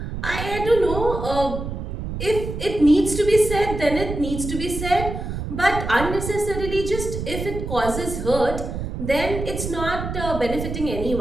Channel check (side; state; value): right; noise; rumble, 6 dB below the sound